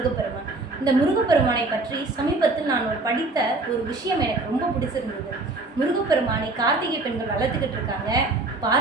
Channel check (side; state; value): left; quieter; 3.2 dB